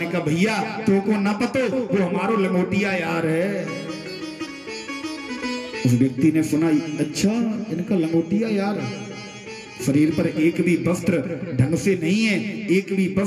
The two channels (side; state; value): both; identical; correlation 1.00